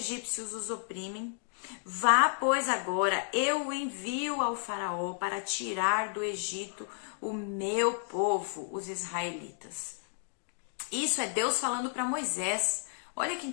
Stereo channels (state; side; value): silent; right; digital silence